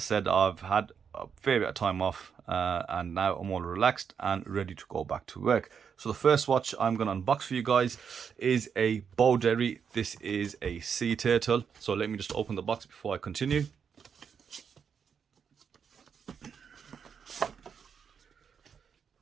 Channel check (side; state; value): left; quieter; 6.9 dB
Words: I've had a fair bit of time off, and now I'm all relaxed and ready to go back to work. So the first watch I'm going to unbox for you guys is a Boderry. This is a SeaTurtle. So let me just open the box before I continue.